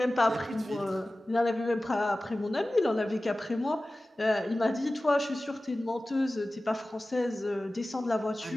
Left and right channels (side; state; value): both; normal; correlation 0.96